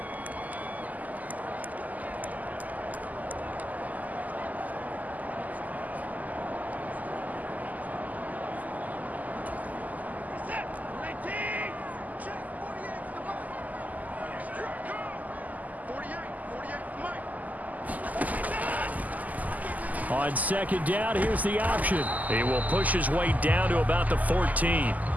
On 2nd down, here's the option. He will push his way down to about the 14.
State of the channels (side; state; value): left; late; 0.079 ms